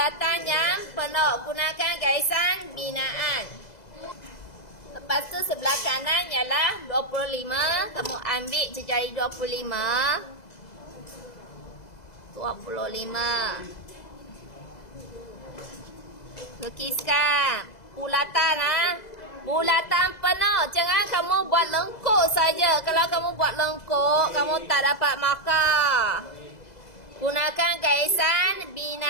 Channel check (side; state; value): right; late; 2.0 ms